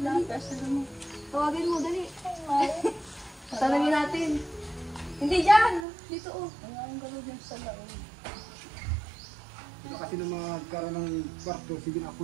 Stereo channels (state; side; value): drops out; left; at 5.9 s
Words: kasi mo. Tawagin mo, dali. Tanungin natin. Hindi dyan. Dito oh. Ang gano'n din sa laon. Sila kasi na magkaroon ng kwarto, sige na